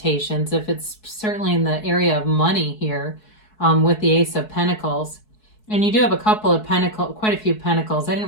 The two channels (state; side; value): late; right; 4.7 ms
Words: if it's certainly in the area of money here. With the Ace of Pentacles. And you do have a couple of pentacles, quite a few pentacles. I